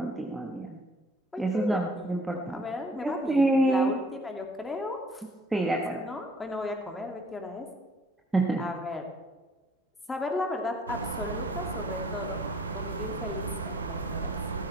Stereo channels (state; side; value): normal; both; correlation 0.58